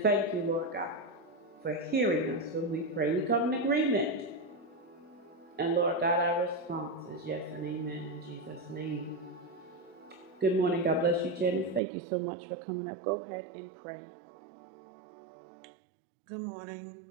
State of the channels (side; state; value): left; drops out; at 11.8 s